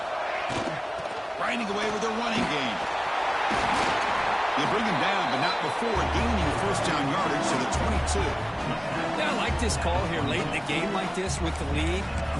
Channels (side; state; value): both; identical; correlation 1.00